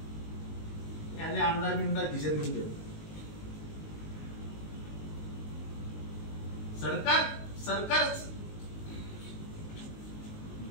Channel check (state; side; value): late; right; 19 ms